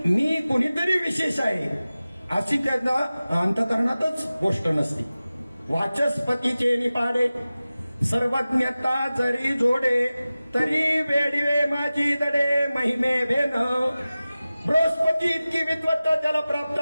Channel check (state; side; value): inverted; both; correlation -0.96